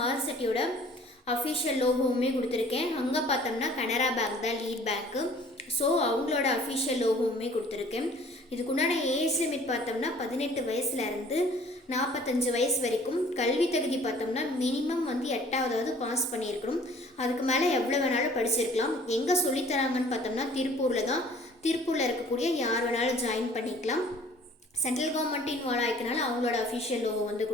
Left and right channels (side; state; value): both; normal; correlation 0.53